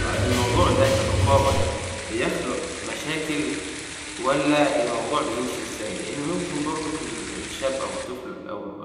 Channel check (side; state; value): both; identical; correlation 1.00